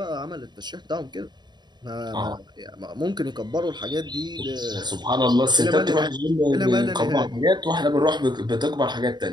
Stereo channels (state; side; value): late; left; 0.21 ms